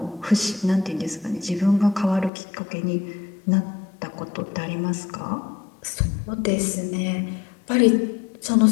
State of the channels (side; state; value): right; drops out; at 2.3 s